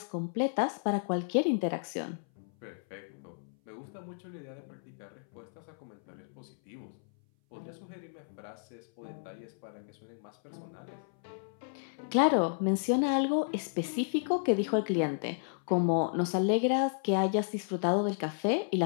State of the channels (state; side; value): silent; right; 56 dB below the other